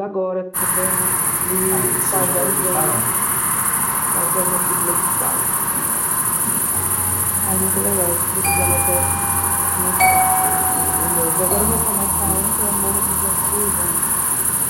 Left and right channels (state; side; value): identical; both; correlation 1.00